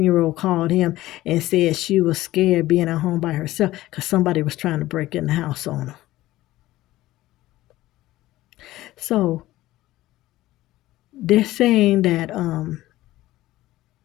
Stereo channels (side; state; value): right; quieter; 16.3 dB